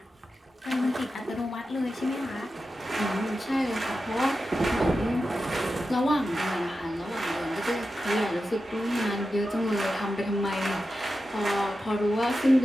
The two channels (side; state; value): both; normal; correlation 0.91